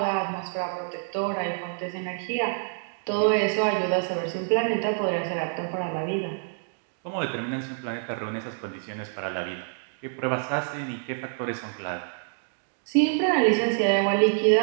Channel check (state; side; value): silent; left; digital silence